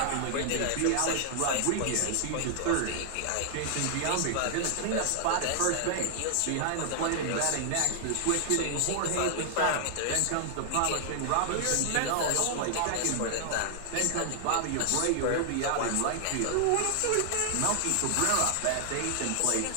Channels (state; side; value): different; both; correlation 0.00